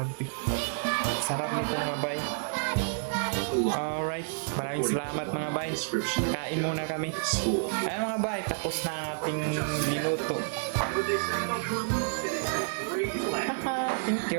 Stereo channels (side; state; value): left; silent; digital silence